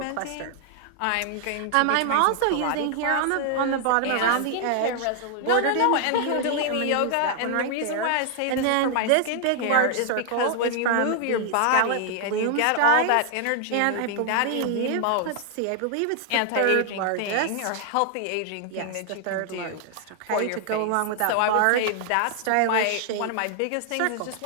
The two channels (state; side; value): different; both; correlation 0.00